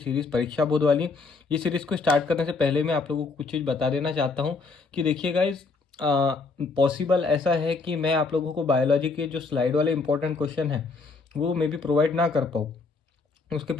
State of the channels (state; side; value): quieter; right; 4.1 dB